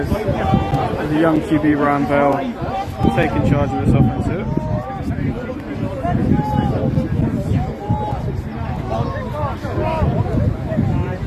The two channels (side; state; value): both; identical; correlation 1.00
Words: the young QB Ryan Bell taking charge of this offense here.